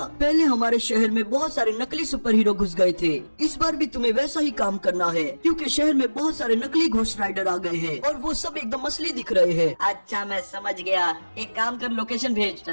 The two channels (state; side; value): inverted; both; correlation -1.00